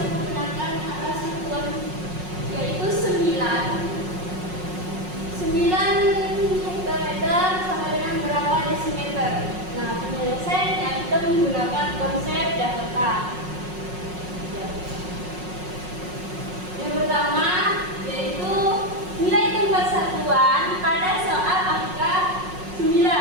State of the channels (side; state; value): left; late; 5.5 ms